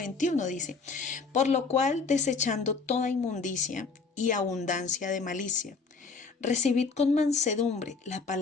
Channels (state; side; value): quieter; right; 4.5 dB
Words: dice, por lo cual, desechando toda inmundicia y abundancia de malicia, recibid con mansedumbre la